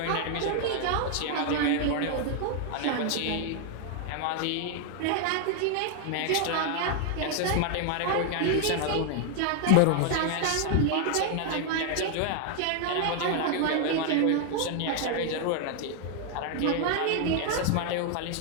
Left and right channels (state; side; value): different; both; correlation 0.00